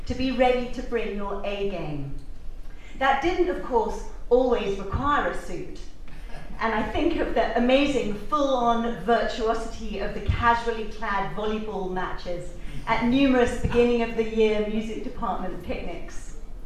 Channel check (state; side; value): identical; both; correlation 1.00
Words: to be ready to bring your A game. That didn't, of course, always require a suit. And I think of the amazing full-on virtuosity of the casually clad volleyball matches at numerous beginning of the year music department picnics.